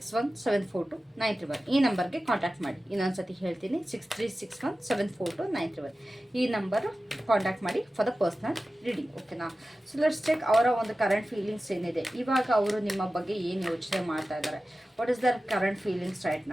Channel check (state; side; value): normal; both; correlation 0.95